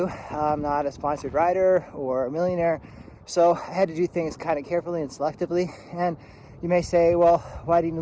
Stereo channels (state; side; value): identical; both; correlation 1.00